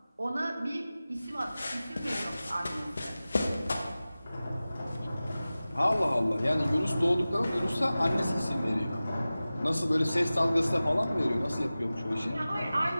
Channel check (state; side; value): inverted; both; correlation -0.97